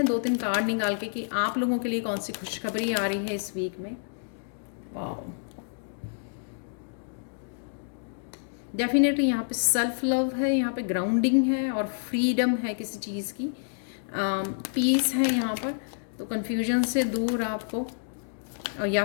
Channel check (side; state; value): right; silent; digital silence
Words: 2-3 कार्ड निकाल के कि आप लोगों के लिए कौन सी खुशखबरी आ रही है इस वीक में। वाह, डेफिनेटली यहाँ पे सेल्फ लव है, यहाँ पे ग्राउंडिंग है और फ्रीडम है किसी चीज़ की, पीस है यहाँ पर। तो कन्फ्यूजन से दूर आपको, और या